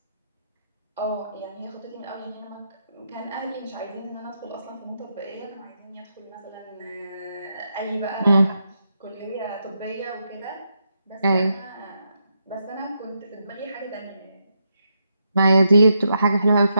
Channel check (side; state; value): both; inverted; correlation -0.82